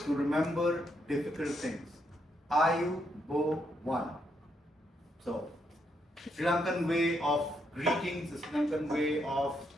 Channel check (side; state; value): both; normal; correlation 0.78